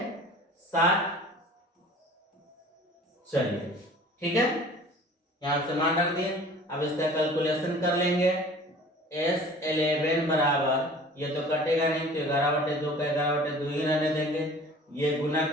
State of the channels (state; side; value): normal; both; correlation 0.46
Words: चलिए ठीक है, यहां से मान रख दिए। अब इसका कैलकुलेशन कर लेंगे। S11 बराबर, ये तो कटेगा नहीं तो 11/2 का 11/2 ही रहने देंगे, ये गुना